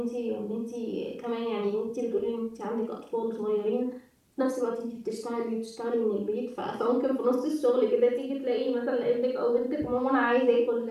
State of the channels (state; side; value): identical; both; correlation 1.00